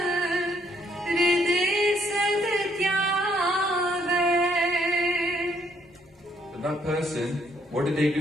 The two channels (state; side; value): normal; both; correlation 0.69